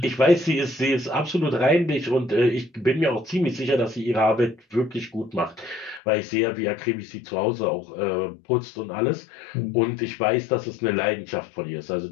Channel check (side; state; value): right; drops out; at 6.0 s